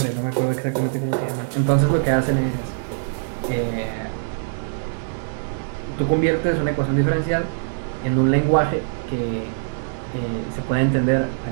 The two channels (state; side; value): silent; left; digital silence